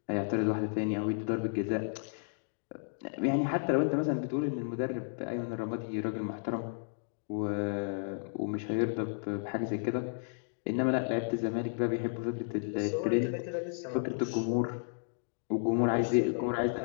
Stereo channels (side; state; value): right; silent; digital silence